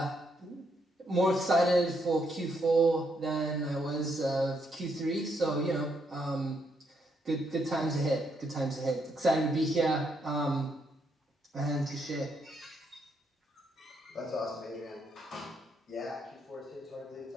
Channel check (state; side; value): normal; both; correlation 0.76